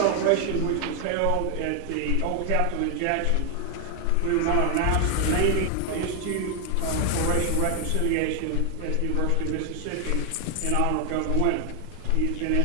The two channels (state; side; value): different; both; correlation 0.00